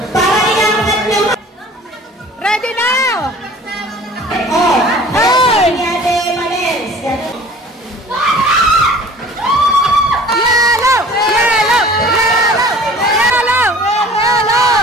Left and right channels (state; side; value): normal; both; correlation 0.47